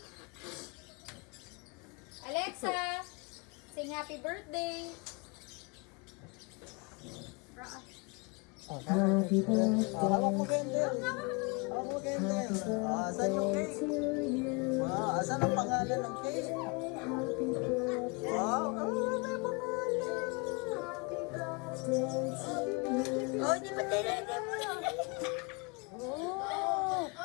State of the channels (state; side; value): quieter; right; 31.0 dB